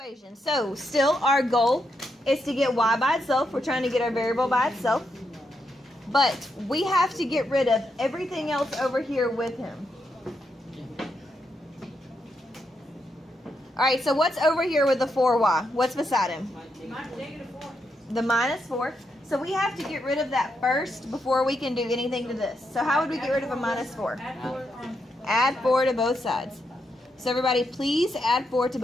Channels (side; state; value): both; normal; correlation 0.81